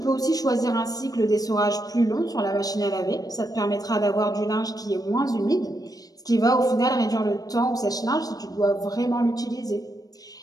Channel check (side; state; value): right; late; 0.18 ms